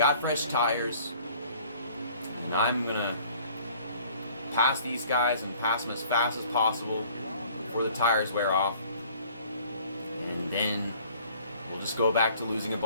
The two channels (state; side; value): inverted; both; correlation -0.54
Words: fresh tires. And I'm going to pass these guys and pass them as fast as possible before the tires wear off. And then we'll just go back to losing a